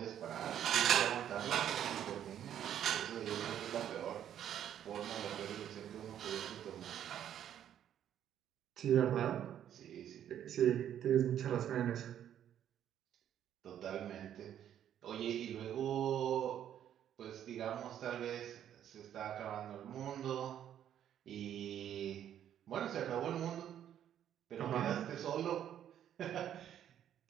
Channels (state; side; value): quieter; left; 10.3 dB